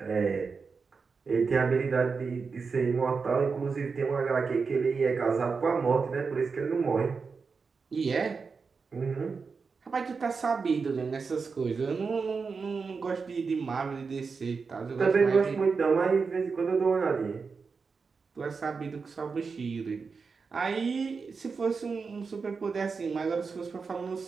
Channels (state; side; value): quieter; left; 5.0 dB